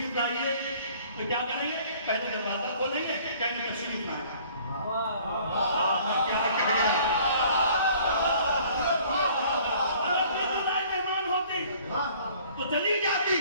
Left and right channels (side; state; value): both; inverted; correlation -0.55